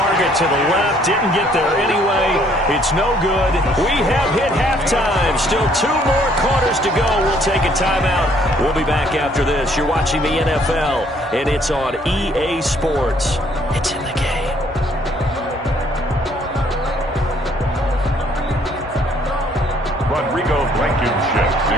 to the left. Didn't get there anyway. It's no good. We have hit halftime. Still 2 more quarters to go. We'll take a timeout. We'll be back after this. You're watching the NFL, and it's on EA Sports. It's in the game. Rodrigo Blankenship to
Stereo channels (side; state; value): both; normal; correlation 0.63